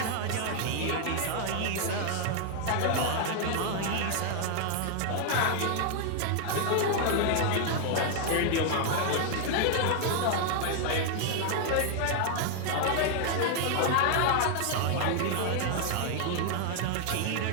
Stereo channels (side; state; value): both; different; correlation 0.00